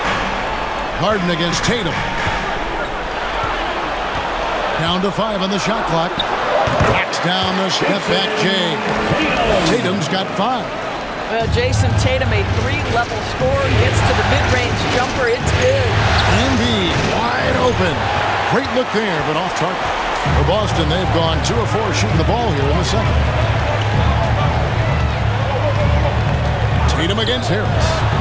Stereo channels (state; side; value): identical; both; correlation 1.00